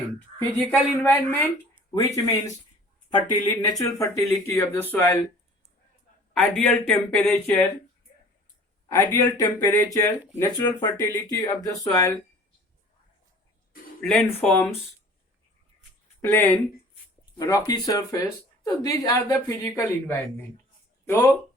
Physical environment, which means natural fertility of the soil, ideal temperature, natural fertility of the soil, landforms, plain, rocky surface. So these are the physical environment. So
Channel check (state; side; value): normal; both; correlation 0.47